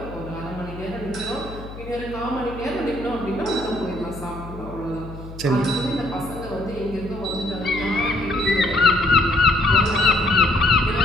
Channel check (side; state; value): left; noise; hum, 13 dB below the sound